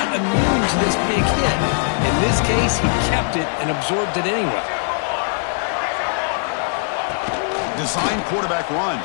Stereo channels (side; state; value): right; silent; 66 dB below the other